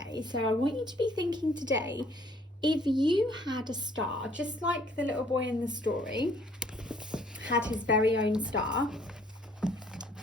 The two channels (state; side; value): normal; both; correlation 0.61